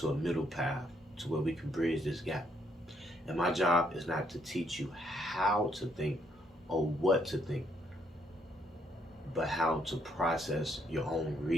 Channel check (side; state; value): both; normal; correlation 0.72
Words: a middle path, to where we can bridge this gap. And my job is not to teach you how to think or what to think, but how to process your own